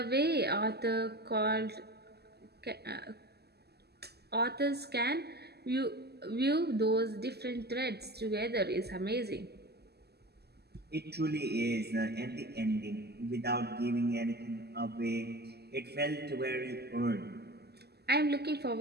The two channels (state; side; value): late; left; 0.47 ms